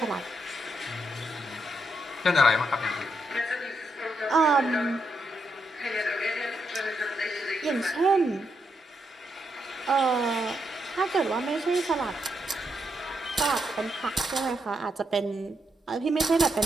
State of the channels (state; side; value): normal; both; correlation 0.80